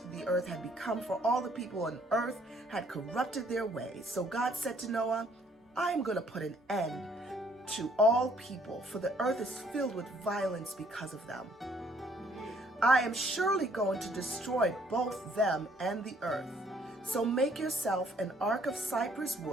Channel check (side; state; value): both; normal; correlation 0.63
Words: the earth had become, for all the people on earth had corrupted their ways. So God said to Noah, I am going to put an end to all people, for the earth is filled with violence because of them. I am surely going to destroy both them and the earth. So make yourself an ark of cypress